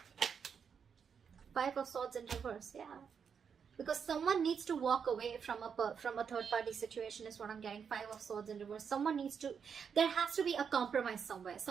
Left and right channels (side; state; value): left; quieter; 6.8 dB